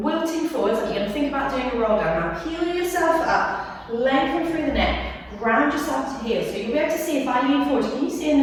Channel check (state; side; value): identical; both; correlation 1.00